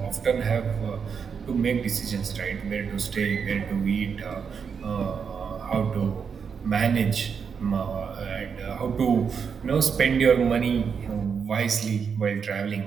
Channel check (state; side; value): quieter; left; 6.4 dB